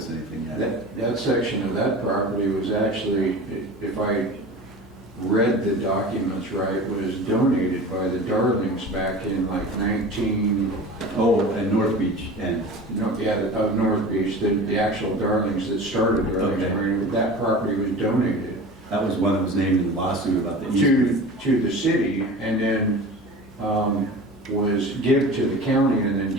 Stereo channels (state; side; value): normal; both; correlation 0.35